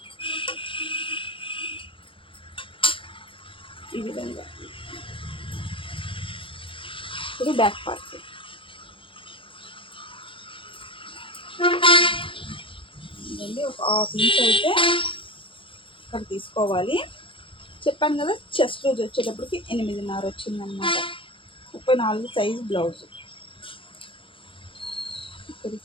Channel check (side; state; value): right; late; 0.25 ms